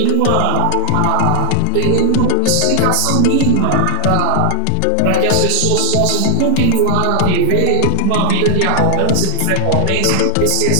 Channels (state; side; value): different; both; correlation 0.00